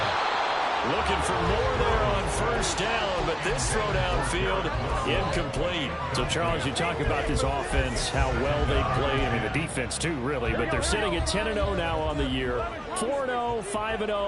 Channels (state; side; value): identical; both; correlation 1.00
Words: Looking for more there on first down, but this throw downfield incomplete. So, Charles, you talk about this offense, how well they play. I mean, the defense, too, really. But they're sitting at 10-0 now on the year. 4-0,